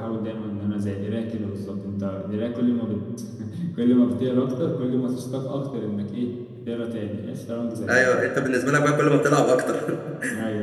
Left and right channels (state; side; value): identical; both; correlation 1.00